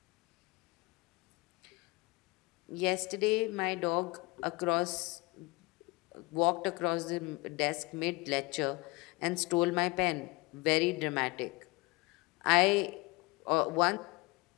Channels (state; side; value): quieter; right; 24.6 dB